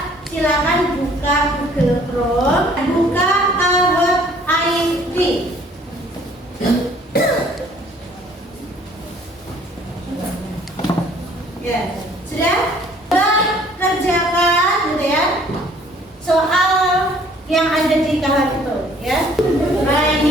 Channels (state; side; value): normal; both; correlation 0.57